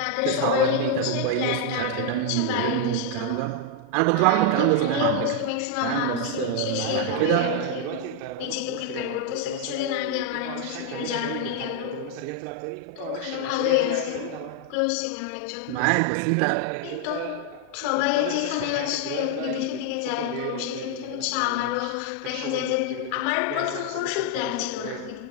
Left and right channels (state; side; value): different; both; correlation 0.00